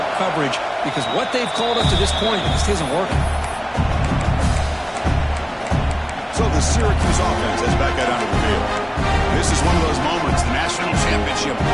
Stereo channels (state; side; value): identical; both; correlation 1.00